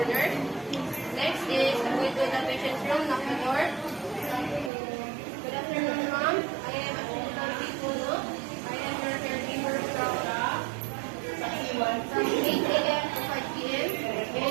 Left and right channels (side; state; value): left; drops out; at 4.7 s